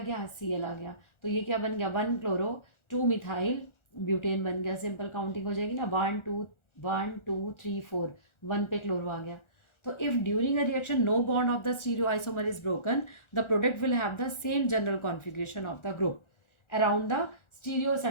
Cl आ गया. तो ये क्या बन गया, 1 क्लोरो 2 मिथाइल ब्यूटेन बन गया. सिंपल काउंटिंग हो जाएगी ना, 1 2 3 4, 1 पे क्लोरो आ गया. So if during a reaction no bond of the stereoisomer is broken, the product will have the same general configuration of the group around the stereo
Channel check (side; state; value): right; late; 1.4 ms